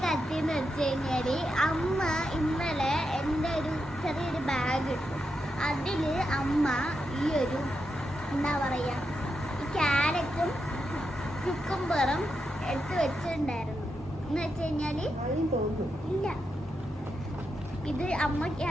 കത്തിന്ന് വെച്ച് കഴിഞ്ഞാല്, അമ്മ ഇന്നലെ എൻ്റെ ഒരു ചെറിയൊരു ബാഗ് ഇട്ടു. അതില് അമ്മ ഈ ഒരു എന്താ പറയാ, ഈ ക്യാരറ്റും ക്യുക്കുംബറും എടുത്ത് വെച്ചിട്ടുണ്ടായിരുന്നു. എന്ന് വെച്ച് കഴിഞ്ഞാല് ഇല്ല, ഇത് അമ്മ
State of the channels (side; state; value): both; normal; correlation 0.85